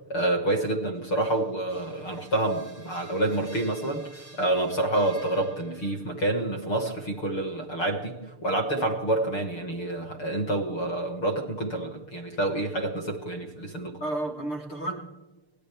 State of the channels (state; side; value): late; right; 6.7 ms